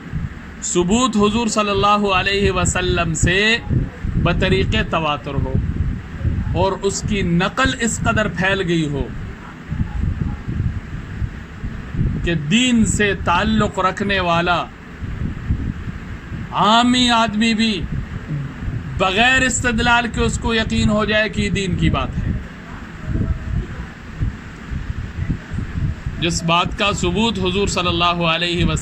ثبوت حضور صلی اللہ علیہ وسلم سے بطریق تواتر ہو، اور اس کی نقل اس قدر پھیل گئی ہو کہ دین سے تعلق رکھنے والا عامی آدمی بھی بغیر استدلال کے اس کو یقین ہو جائے کہ دین کی بات ہے. جس بات کا ثبوت حضور صلی اللہ علیہ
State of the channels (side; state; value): both; identical; correlation 1.00